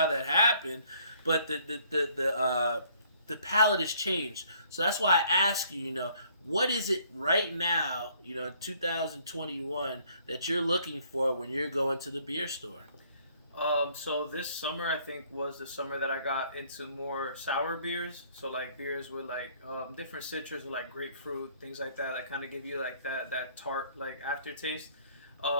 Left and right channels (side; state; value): both; inverted; correlation -0.62